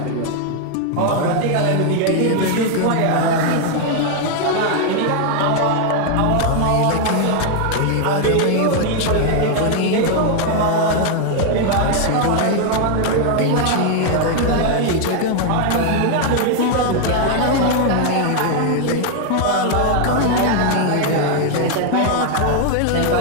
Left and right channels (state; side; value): different; both; correlation 0.00